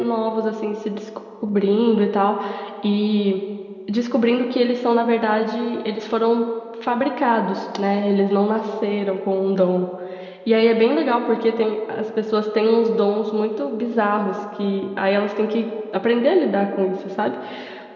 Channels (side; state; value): both; identical; correlation 1.00